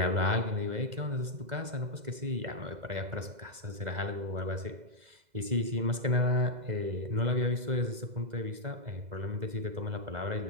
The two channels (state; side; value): late; left; 2.0 ms